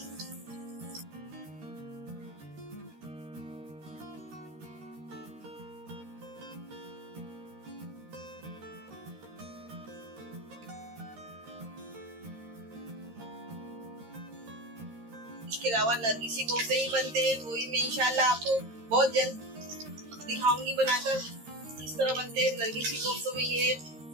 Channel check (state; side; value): late; left; 13 ms